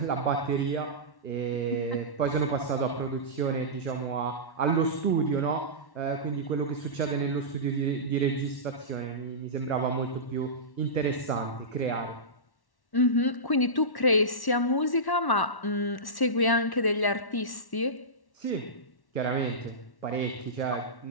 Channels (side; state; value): right; late; 1.1 ms